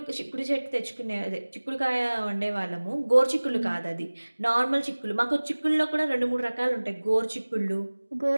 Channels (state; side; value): inverted; both; correlation -1.00